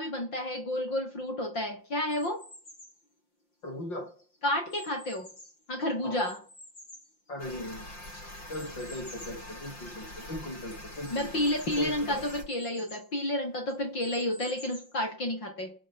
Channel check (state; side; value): late; right; 5.7 ms